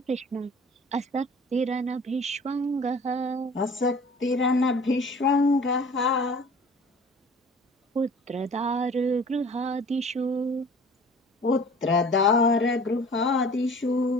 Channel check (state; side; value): normal; both; correlation 0.46